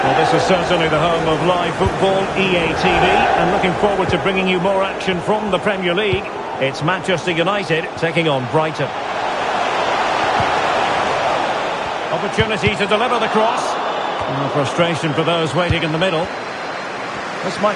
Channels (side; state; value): both; identical; correlation 1.00